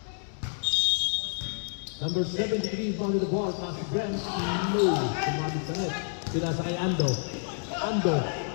Number 73 found the ball. Pass to Brent. No. Sumabit sa net. Pinasa kay Ando. Ando.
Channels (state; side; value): silent; right; 59 dB below the other